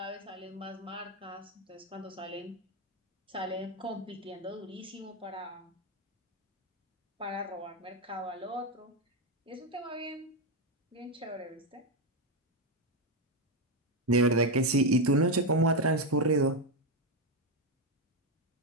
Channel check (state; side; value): normal; both; correlation 0.07